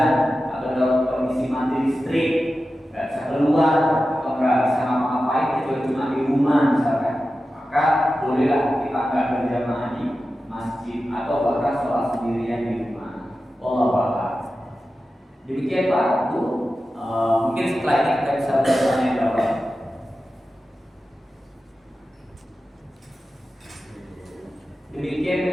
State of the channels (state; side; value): normal; both; correlation 0.93